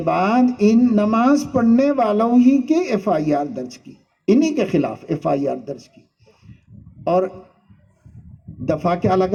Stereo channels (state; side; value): identical; both; correlation 1.00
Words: بعد ان نماز پڑھنے والوں ہی کی ایف آئی آر درج کی، انہی کے خلاف ایف آئی آر درج کی، اور دفعہ کیا